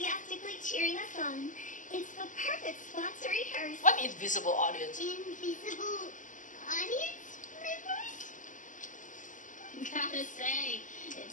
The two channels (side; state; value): right; late; 0.37 ms